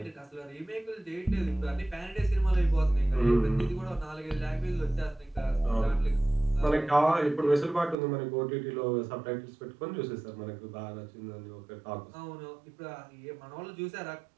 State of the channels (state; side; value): drops out; left; at 8.0 s